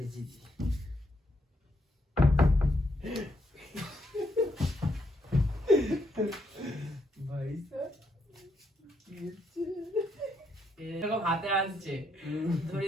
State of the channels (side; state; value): both; normal; correlation 0.76